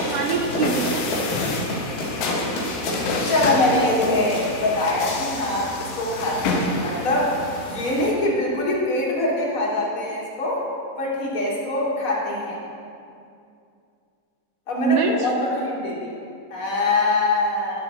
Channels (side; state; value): right; late; 4.1 ms